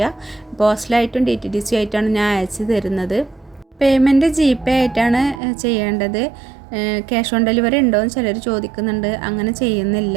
പോസ്റ്റലായിട്ടും DTDC ആയിട്ടാണ് ഞാൻ അയച്ചു തരുന്നത്. പേയ്മെൻറ്റ് GPay ആയിട്ടാണ് ചെയ്യേണ്ടത്. ക്യാഷ് ഓൺ ഡെലിവറി ഉണ്ടോയെന്ന് ചിലർ ചോദിക്കുന്നുണ്ട്. അങ്ങനെ ചെയ്യുന്നില്ല.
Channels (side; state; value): left; drops out; at 5.4 s